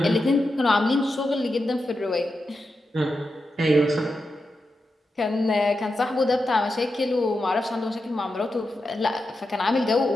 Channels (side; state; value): both; normal; correlation 0.89